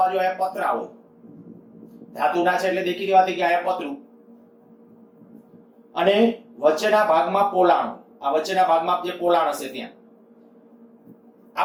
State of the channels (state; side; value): identical; both; correlation 1.00